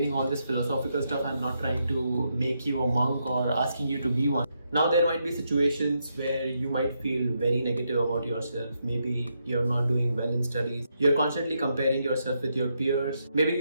all this philosophical stuff, I'm not trying to make you a monk or asking you to be one. Now, there might be situations where you might feel very negative about yourself. Maybe you're not doing well in studies. You're constantly comparing yourself with your peers. Maybe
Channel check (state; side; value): inverted; both; correlation -0.80